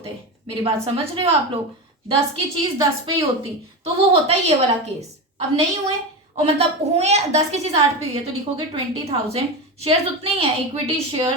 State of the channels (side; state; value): both; normal; correlation 0.20